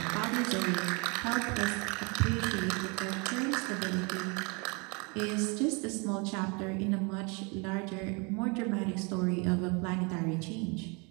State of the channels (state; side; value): quieter; left; 31.2 dB